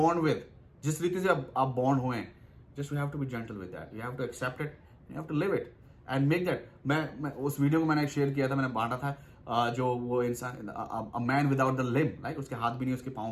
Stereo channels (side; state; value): both; identical; correlation 1.00